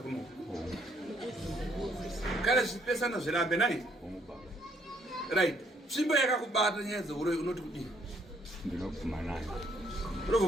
Kana zvipesana zvirambe nai. Right. Simbo yakakubata nyenze unoti kudini. Ndinokuvuma nayo.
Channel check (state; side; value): normal; both; correlation 0.67